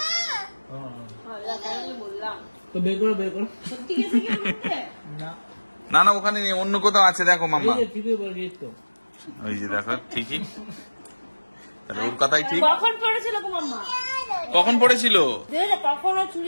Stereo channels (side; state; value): both; inverted; correlation -1.00